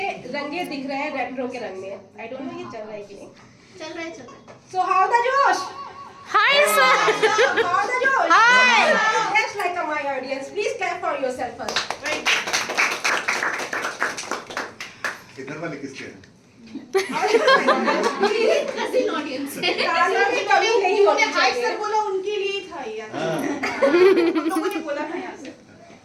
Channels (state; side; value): identical; both; correlation 1.00